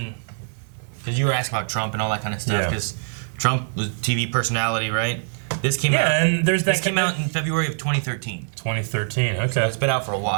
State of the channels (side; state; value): left; silent; digital silence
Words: because you were asking about Trump and all that kind of stuff. Yeah. Because Trump was TV personality, right? This came out. Yeah, and there's that This came out in February of 2013. 2013. Okay. So it's been out for a